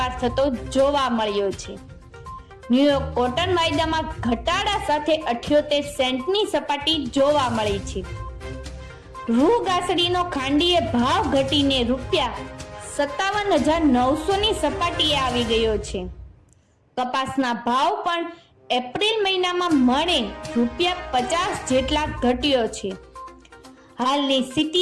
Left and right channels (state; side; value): identical; both; correlation 1.00